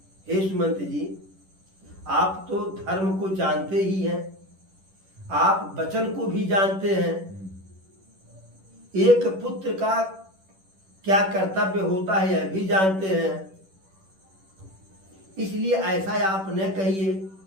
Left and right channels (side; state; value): left; late; 10 ms